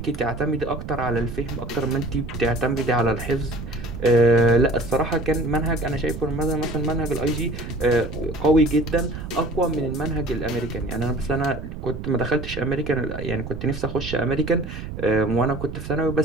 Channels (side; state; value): right; noise; rumble, 9 dB below the sound